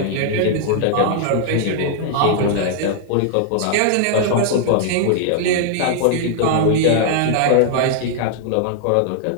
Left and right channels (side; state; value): both; different; correlation 0.00